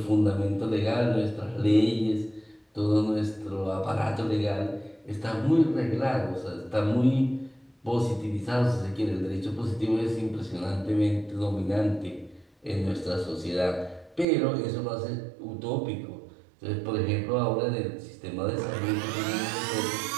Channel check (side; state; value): left; drops out; at 14.2 s